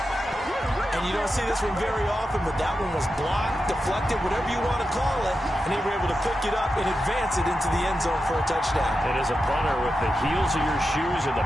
And you don't see this one very often, but that one was blocked, deflected, whatever you want to call it, and they were able to pick it up and advance it into the end zone for a touchdown. And as a punter with the heels of your shoes in the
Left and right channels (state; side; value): normal; both; correlation 0.90